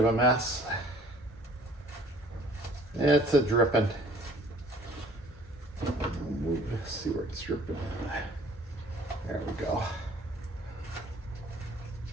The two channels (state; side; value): normal; both; correlation 0.54